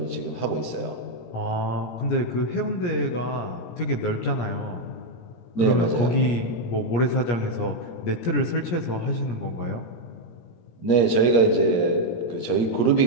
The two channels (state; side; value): late; right; 17 ms